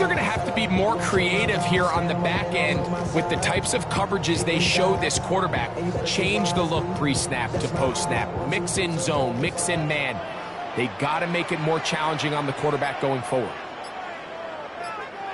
going to have to be more creative here on the back end with the types of coverages they show this quarterback. Change the look pre-snap to post-snap. Mix in zone, mix in man. They got to make it more challenging on the quarterback going forward.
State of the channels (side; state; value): both; identical; correlation 1.00